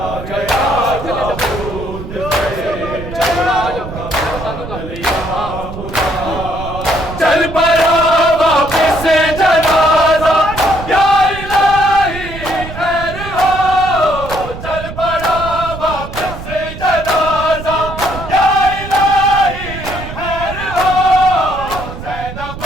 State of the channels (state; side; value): noise; right; rumble, 10 dB below the sound